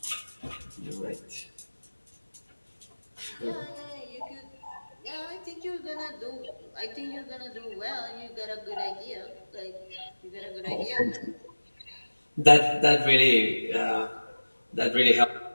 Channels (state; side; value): inverted; both; correlation -1.00